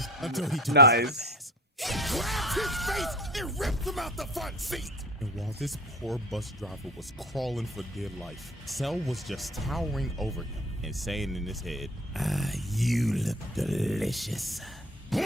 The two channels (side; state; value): both; normal; correlation 0.38